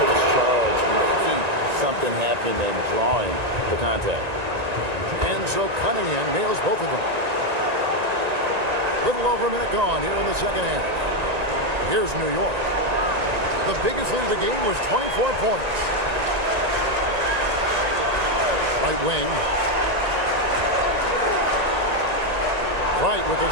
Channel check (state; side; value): late; left; 1.9 ms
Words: takes charge, making something happen and drawing the contact. And so Cunningham nails both of them. Little over a minute gone here in the second half. Here's New York. The biggest lead of the game was 24 points. Right wing. Wright with a